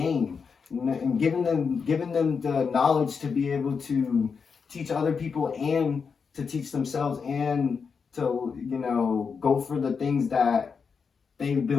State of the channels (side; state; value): right; quieter; 5.7 dB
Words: you know, and giving them the knowledge to be able to teach other people and to teach themselves, and to, you know, go for the things that they've